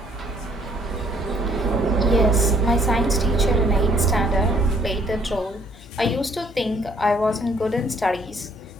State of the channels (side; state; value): both; normal; correlation 0.63